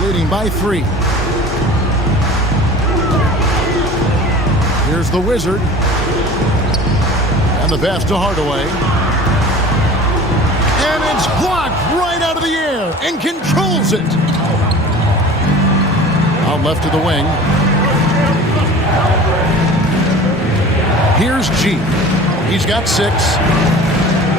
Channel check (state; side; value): normal; both; correlation 0.41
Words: leading by 3. Here's the Wizard. And the pass to Hardaway. And it's blocked right out of the air and controls it. Out left to the wing. Here's G. He's got 6.